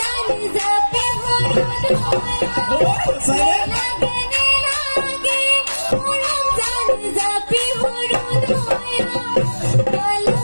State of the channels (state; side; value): inverted; both; correlation -1.00